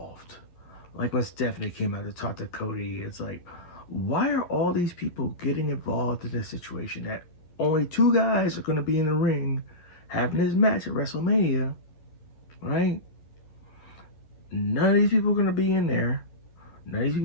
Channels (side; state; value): right; late; 11 ms